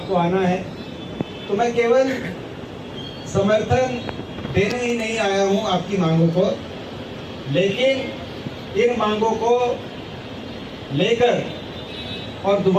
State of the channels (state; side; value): identical; both; correlation 1.00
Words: आना है, तो मैं केवल समर्थन देने ही नहीं आया हूं आपकी मांगों को, लेकिन इन मांगों को लेकर और